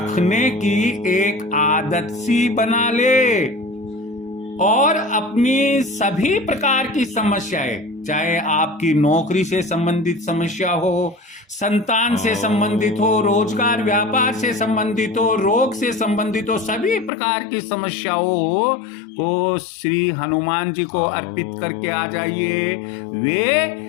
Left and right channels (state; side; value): drops out; right; at 17.1 s